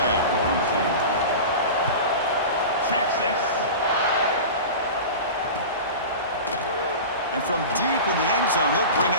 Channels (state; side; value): inverted; both; correlation -0.30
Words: Texas. And from deep in the end zone, he'll bring